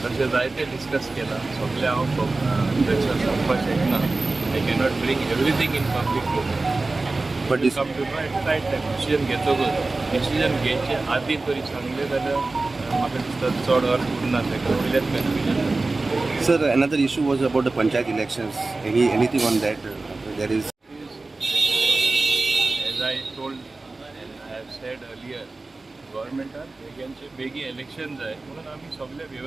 तशें जायते डिस्कस केला सगळे हांव प्रेशर सांगपाक शकना. I cannot bring everything in public but come to know at right time decision घेतकच डिसिजन घेवचे आदीं तरी सांगलें जाल्यार म्हाका दिसता चड अर्थ उरना तेका वयल्याच confusion. Sir another issue was about the Panchayat elections. Anything on that? There is. As I told and I have said earlier, गव्हर्मेंटान बेगी इलेक्शन जाय म्हणून आमी सगळे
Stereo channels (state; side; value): quieter; left; 3.4 dB